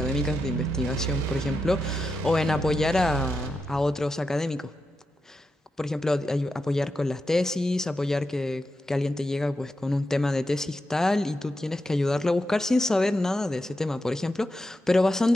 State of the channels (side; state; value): both; normal; correlation 0.88